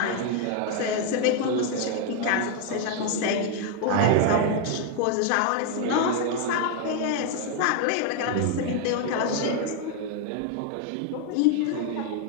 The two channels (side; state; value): both; different; correlation 0.00